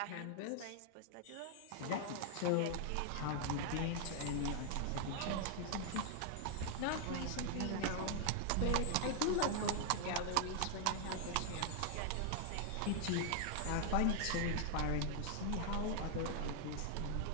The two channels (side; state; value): both; different; correlation 0.00